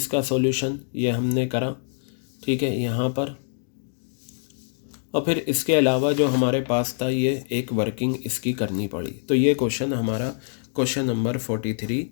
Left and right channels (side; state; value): right; silent; digital silence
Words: सॉल्यूशन ये हमने करा, ठीक है, यहाँ पर। और फिर इसके अलावा जो हमारे पास था ये एक वर्किंग इसकी करनी पड़ी। तो ये क्वेश्चन हमारा क्वेश्चन नंबर 43